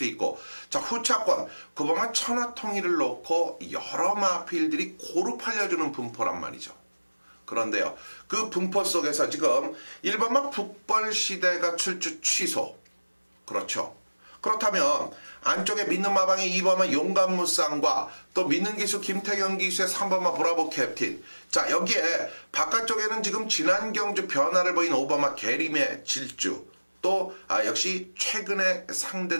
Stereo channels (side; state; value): both; inverted; correlation -1.00